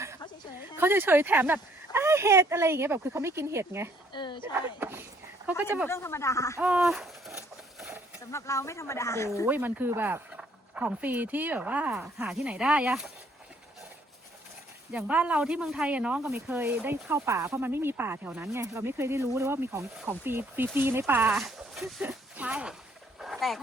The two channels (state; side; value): normal; both; correlation 0.64